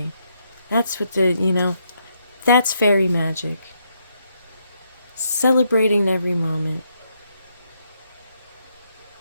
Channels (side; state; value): both; inverted; correlation -0.77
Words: That's what that's fairy magic. Celebrating every moment.